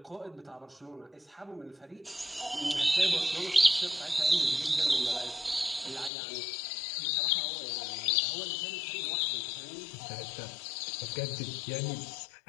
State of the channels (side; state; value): right; drops out; at 6.1 s